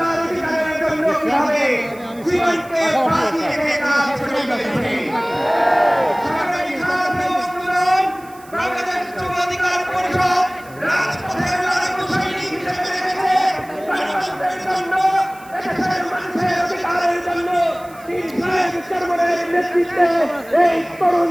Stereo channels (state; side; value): noise; right; hiss, 24 dB below the sound